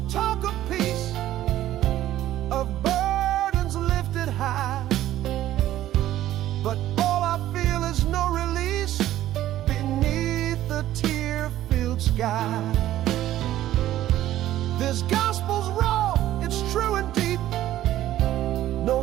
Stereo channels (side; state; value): left; quieter; 13.5 dB